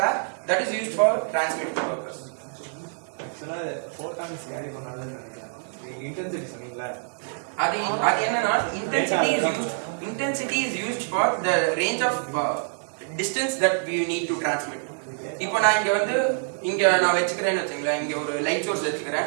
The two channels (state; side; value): silent; left; digital silence